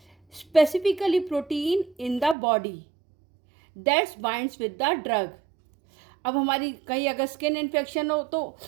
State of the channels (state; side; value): drops out; left; at 2.4 s